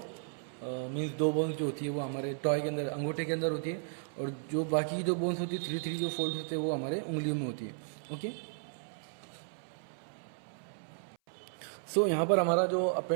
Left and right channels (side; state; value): left; silent; 55 dB below the other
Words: मीन्स 2 बोन्स जो होती है वो हमारे टॉय के अंदर, अंगूठे के अंदर होती है, और जो बाकी जो बोन्स होती है 3 जो फोल्ड होते हैं वो हमारे उंगलियों में होती है, ओके। सो यहाँ पर हमारा जो